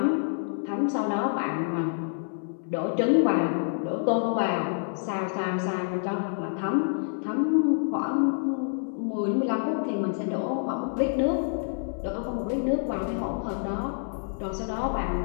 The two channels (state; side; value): silent; right; 60 dB below the other